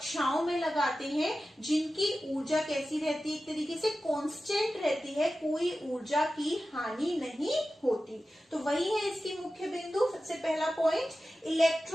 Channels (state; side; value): normal; both; correlation 0.94